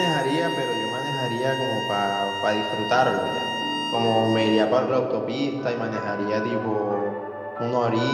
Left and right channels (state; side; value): identical; both; correlation 1.00